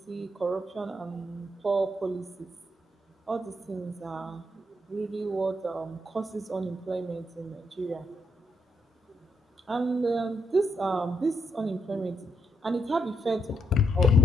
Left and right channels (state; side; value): normal; both; correlation 0.79